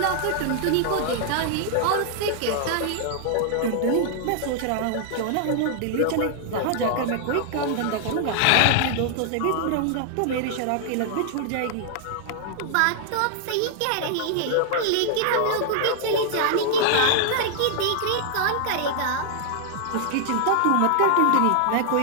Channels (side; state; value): both; different; correlation 0.00